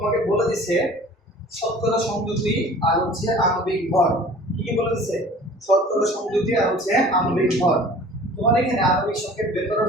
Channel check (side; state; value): both; normal; correlation 0.46